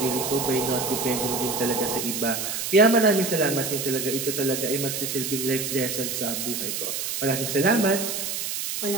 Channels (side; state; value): right; noise; hiss, 3 dB below the sound